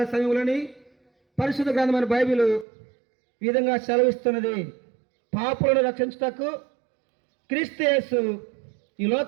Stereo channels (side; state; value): left; drops out; at 2.7 s